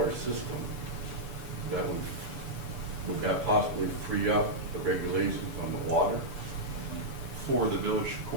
system, that would that possibly free up the regulations on the water? For the village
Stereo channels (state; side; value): late; left; 6.9 ms